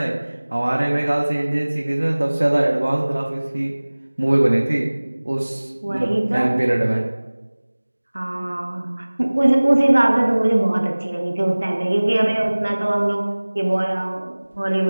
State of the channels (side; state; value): both; inverted; correlation -1.00